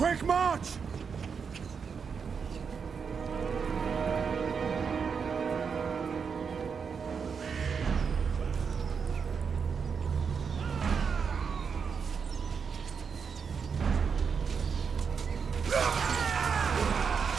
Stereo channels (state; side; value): quieter; left; 6.1 dB